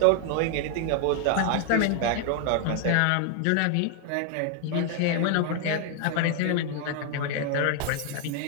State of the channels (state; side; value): different; both; correlation 0.01